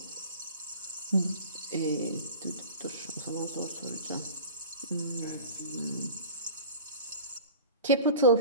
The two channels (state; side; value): inverted; both; correlation -0.38